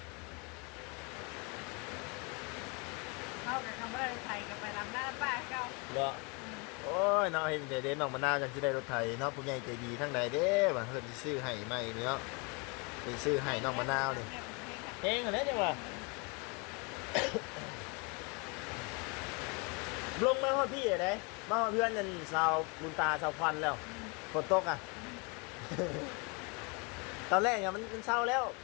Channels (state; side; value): quieter; right; 31.3 dB